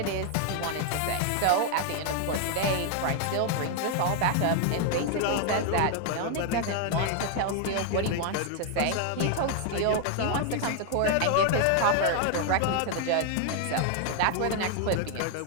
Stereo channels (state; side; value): different; both; correlation 0.00